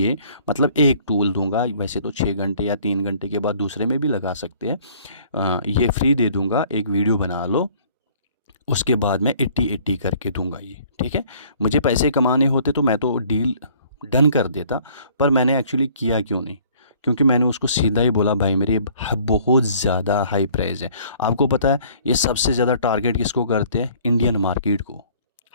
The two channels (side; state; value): both; inverted; correlation -0.56